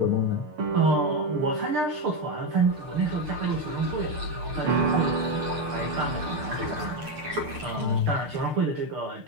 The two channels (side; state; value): left; late; 6.7 ms